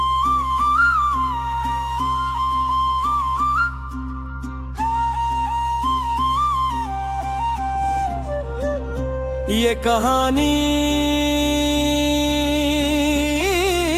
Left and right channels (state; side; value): identical; both; correlation 1.00